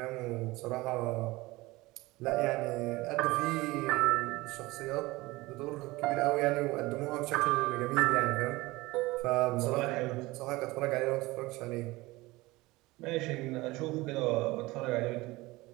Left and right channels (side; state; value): left; quieter; 20.6 dB